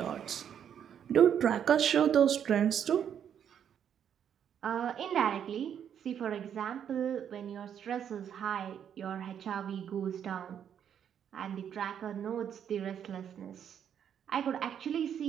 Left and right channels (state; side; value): quieter; left; 8.8 dB